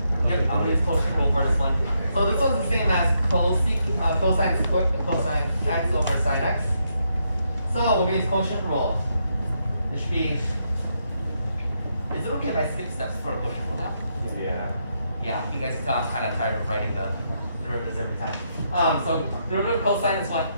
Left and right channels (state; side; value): inverted; both; correlation -0.79